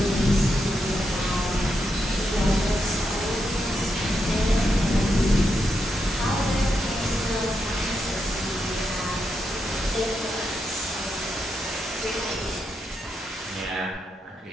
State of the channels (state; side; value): normal; both; correlation 0.83